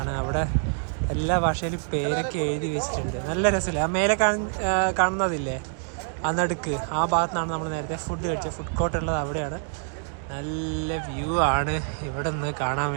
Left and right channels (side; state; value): left; silent; 56 dB below the other